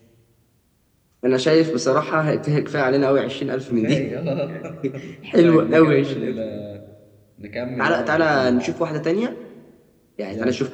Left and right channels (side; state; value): both; identical; correlation 1.00